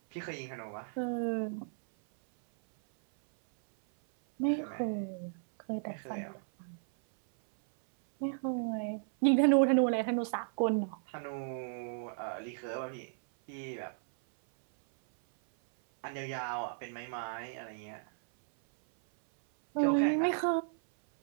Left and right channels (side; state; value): left; silent; 55 dB below the other